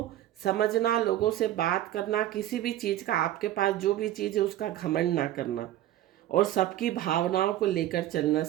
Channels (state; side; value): quieter; left; 13.3 dB